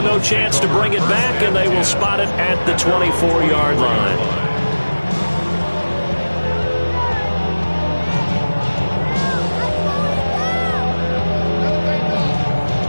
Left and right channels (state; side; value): inverted; both; correlation -1.00